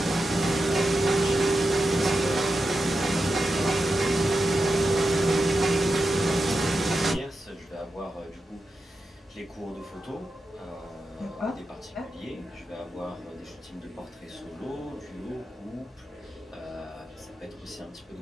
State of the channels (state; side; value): normal; both; correlation 0.89